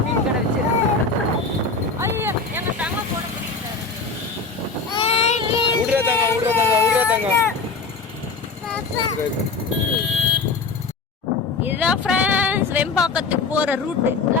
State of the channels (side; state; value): right; quieter; 4.3 dB